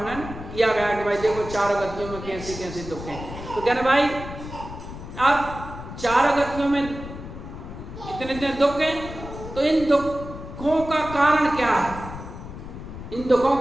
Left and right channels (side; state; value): left; noise; rumble, 11 dB below the sound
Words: किया गया कि भाई देखो चारों गतियों में कैसे कैसे दुख हैं। तो कहना भाई अब चारों गतियों में इतने इतने दुख हैं, तो इन दुखों का कारण क्या है? इन दुखों